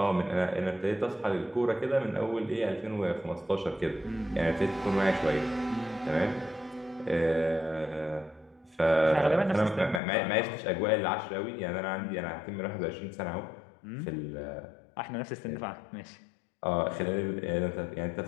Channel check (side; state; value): right; drops out; at 10.0 s